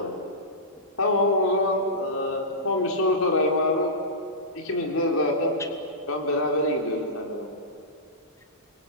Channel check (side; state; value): both; normal; correlation -0.19